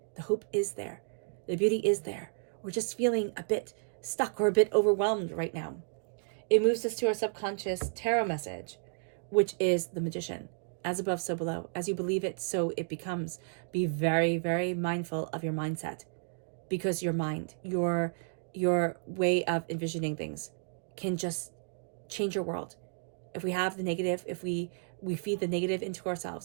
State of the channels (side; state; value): left; silent; digital silence